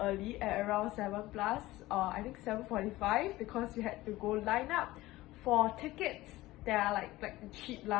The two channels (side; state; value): right; quieter; 17.8 dB